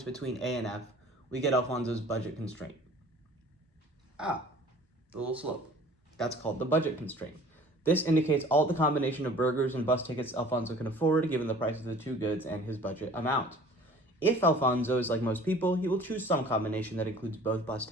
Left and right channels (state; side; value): normal; both; correlation 0.48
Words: between A and F, we get Alfonso's budget constraint. The little slope. That's called the budget constraint. This indicates all the combination of burgers and bus tickets Alfonso can afford given the price of the 2 goods and his budget amount. If Alfonso is like most people, he will choose some combination that includes both bus